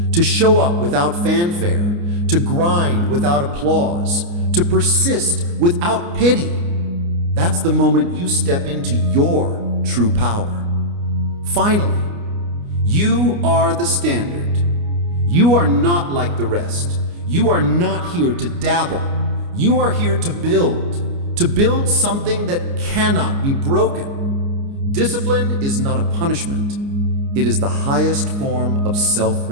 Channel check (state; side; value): late; left; 29 ms